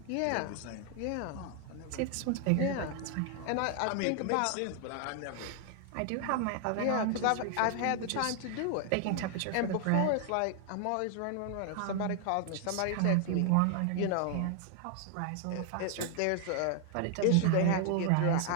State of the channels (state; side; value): different; both; correlation 0.00